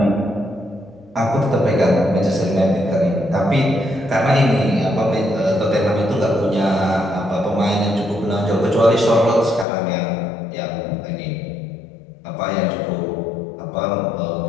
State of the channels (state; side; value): drops out; right; at 9.7 s